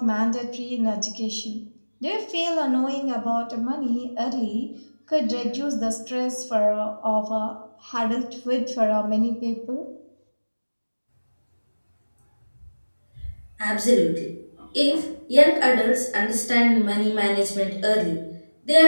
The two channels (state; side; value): inverted; both; correlation -1.00